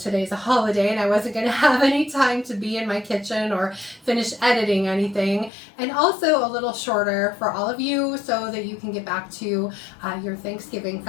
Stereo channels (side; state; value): right; drops out; at 5.5 s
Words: a holiday and I wasn't going to have any time to be in my kitchen or finish editing anything. And also a little shorter for all of you so that you can get back to your Thanksgiving